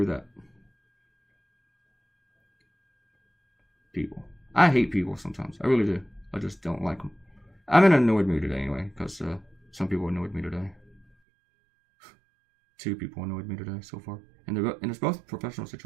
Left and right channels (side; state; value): left; drops out; at 11.1 s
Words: that. People. I hate people sometimes. I really do. I just don't like them. I'm in an annoyed mood today anyway, because some people annoyed me today. 2 people annoyed me today so far. And it's both professional